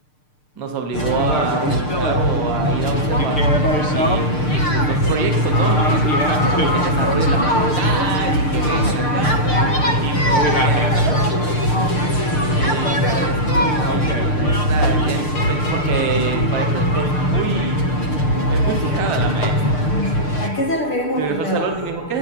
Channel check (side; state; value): right; late; 6.7 ms